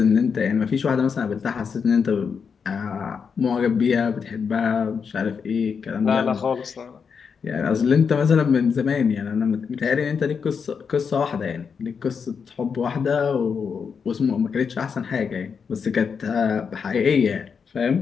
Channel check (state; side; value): quieter; right; 6.1 dB